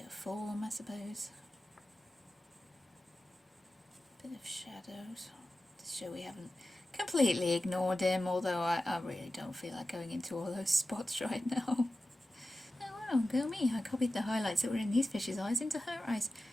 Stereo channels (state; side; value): normal; both; correlation 0.94